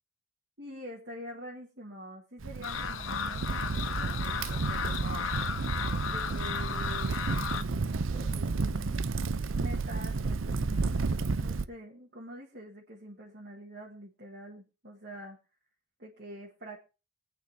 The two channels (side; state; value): both; normal; correlation 0.63